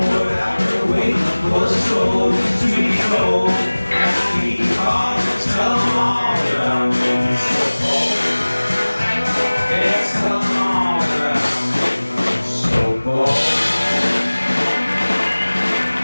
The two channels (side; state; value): both; inverted; correlation -1.00